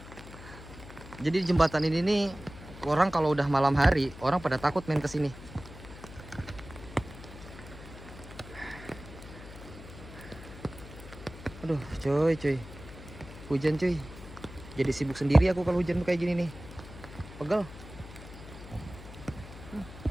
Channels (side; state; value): left; noise; hum, 15 dB below the sound